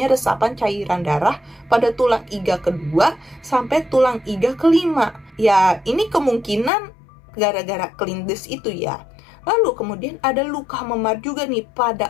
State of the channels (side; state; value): right; drops out; at 6.7 s